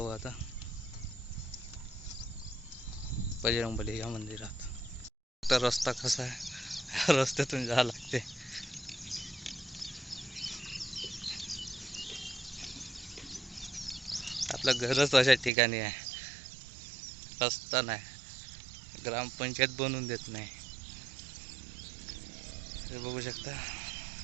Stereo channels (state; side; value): drops out; left; at 15.5 s